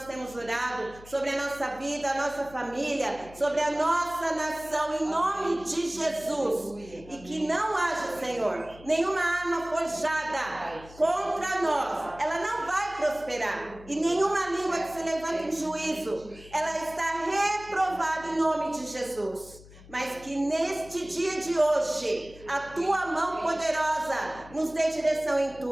temos orado, sobre a nossa vida, a nossa família, sobre a nossa nação, em nome de Jesus. E que não haja, Senhor, nenhuma arma forjada contra nós, ela não vai prosperar. E nenhuma língua que se levanta em juízo, ela está reprovada em nome de Jesus. Mas que neste dia de hoje, a tua mão poderosa nos dê direção em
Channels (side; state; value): left; noise; hum, 20 dB below the sound